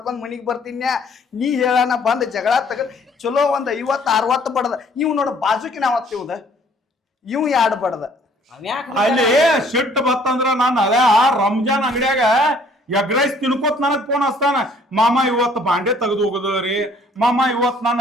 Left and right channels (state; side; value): normal; both; correlation 0.59